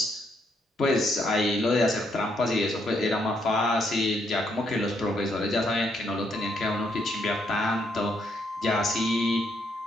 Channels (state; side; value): normal; both; correlation 0.74